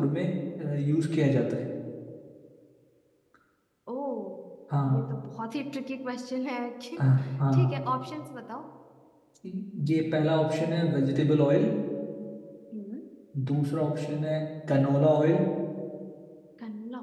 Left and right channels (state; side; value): identical; both; correlation 1.00